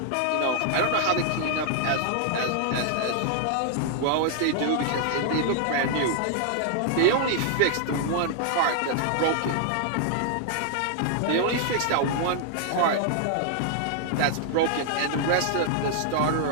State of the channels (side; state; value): both; different; correlation 0.00